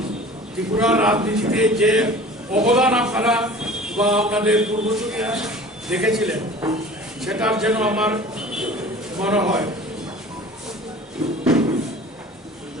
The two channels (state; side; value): normal; both; correlation 0.43